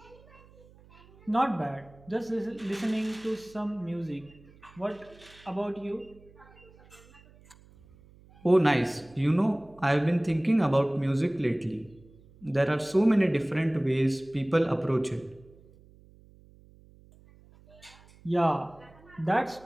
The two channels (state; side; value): noise; right; hum, 25 dB below the sound